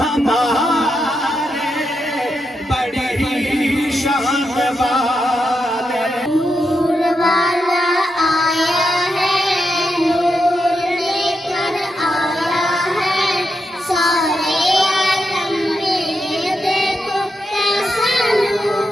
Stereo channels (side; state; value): both; normal; correlation 0.85